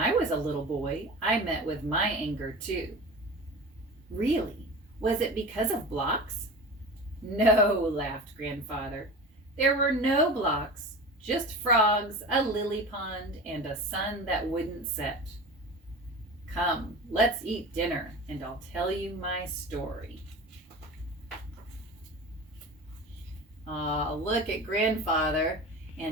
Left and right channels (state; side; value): normal; both; correlation 0.33